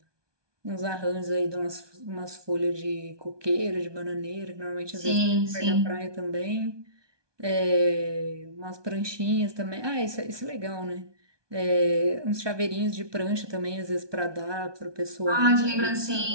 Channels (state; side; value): late; left; 1.2 ms